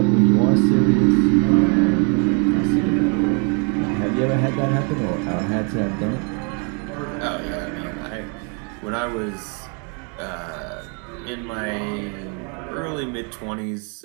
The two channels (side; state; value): left; quieter; 37.2 dB